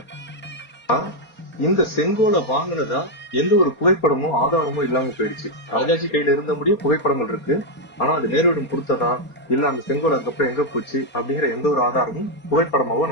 இந்த செங்கோலை வாங்கினதா எந்த ஒரு புகைப்படமோ ஆதாரமோ இல்லாம போயிடுச்சு. ராஜாஜி கையில இருந்த முடியும் புகைப்படங்கள் இருக்கு. ஆனா அது நேருவிடம் கொடுத்ததா இல்ல அந்த செங்கோல் அதுக்கப்புறம் எங்க போச்சு அப்படிங்கிற எந்த ஒரு ஆதாரமும் புகைப்படமாவோ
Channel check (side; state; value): right; late; 4.3 ms